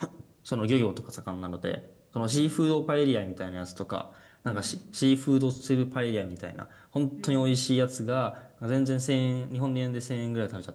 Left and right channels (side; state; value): both; identical; correlation 1.00